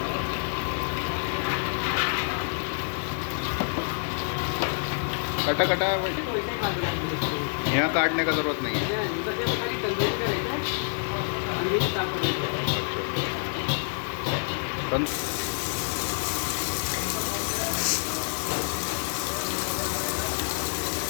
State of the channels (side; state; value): right; silent; digital silence